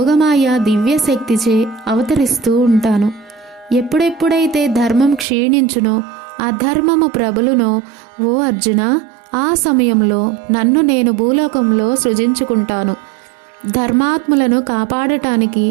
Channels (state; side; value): drops out; left; at 5.2 s